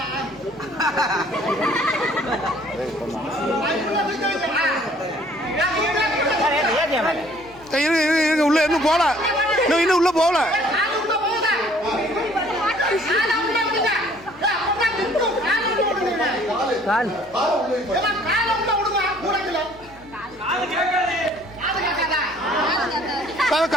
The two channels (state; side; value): normal; both; correlation 0.57